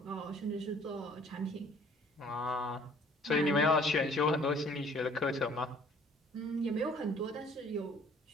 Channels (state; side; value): normal; both; correlation 0.56